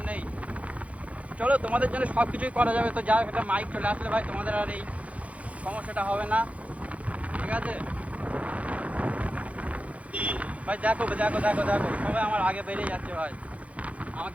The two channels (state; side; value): late; left; 0.066 ms